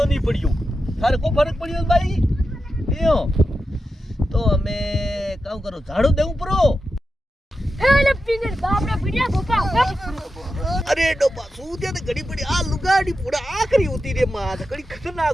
नहीं पड़ियो थारे को फर्क पड़ियो भाई यो तो हमें काऊ करो झाड़ू देऊ परो हेले पिंगर बाप रे बिड़िया गोपा अरे डोपा सूदिया ते घड़ी पड़ी आ लुगाड़ी पूरा आखरी होती रे मां घड़ी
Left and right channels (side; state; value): both; normal; correlation 0.90